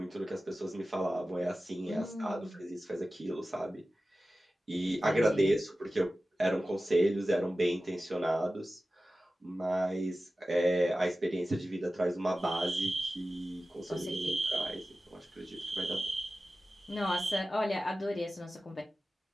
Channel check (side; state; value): both; normal; correlation 0.95